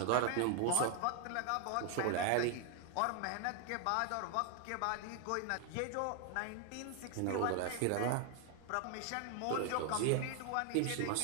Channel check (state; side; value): different; both; correlation 0.00